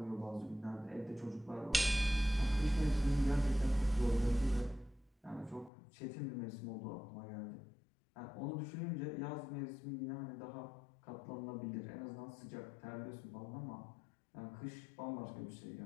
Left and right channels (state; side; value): drops out; right; at 5.7 s